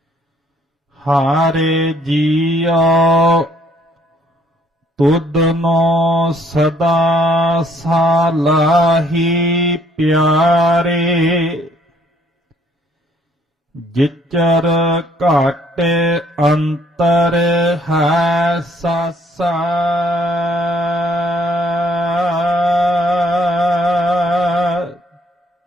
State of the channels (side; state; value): both; normal; correlation 0.64